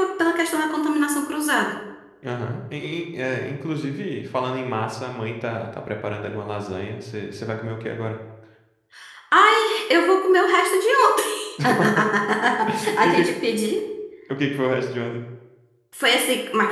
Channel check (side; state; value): both; identical; correlation 1.00